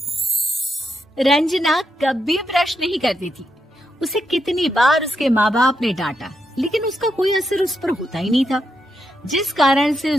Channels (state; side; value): normal; both; correlation 0.83